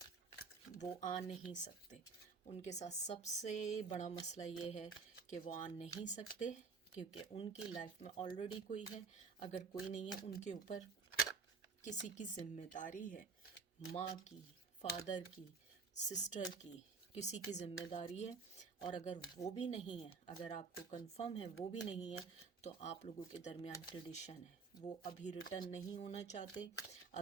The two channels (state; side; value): quieter; left; 4.9 dB